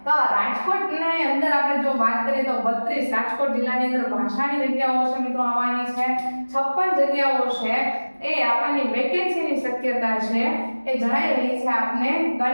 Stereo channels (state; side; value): inverted; both; correlation -1.00